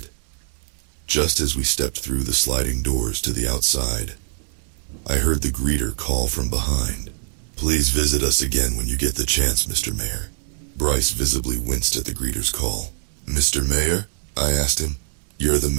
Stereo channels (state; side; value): silent; left; 63 dB below the other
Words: Just as we stepped through the sliding doors to the outside, I heard the greeter call from behind. "Please visit us again when you get the chance, Mr. Mayor." Bryce visibly winced at the greeter's call. "Mr. Mayor?" I asked him. "You're the